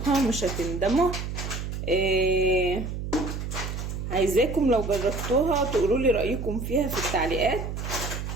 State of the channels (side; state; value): right; noise; hum, 5 dB below the sound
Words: مش هتندموا. عايزاكم لو جربتوها تقولوا لي رايكم فيها في التعليقات،